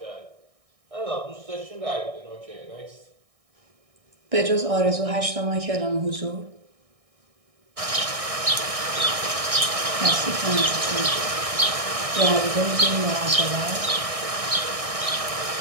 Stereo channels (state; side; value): late; left; 1.6 ms